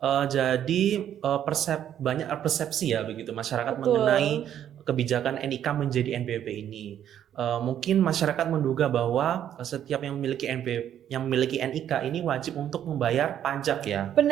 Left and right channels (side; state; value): left; quieter; 10.3 dB